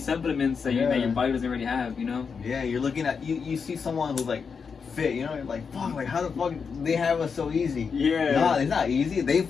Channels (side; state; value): right; quieter; 5.8 dB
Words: that your body doesn't already have, you know? Yeah, you're looking at, you see someone who's like fit, you know, you're like, fuck, like how the fuck they have us so easy? Yeah. No, it's not easy. They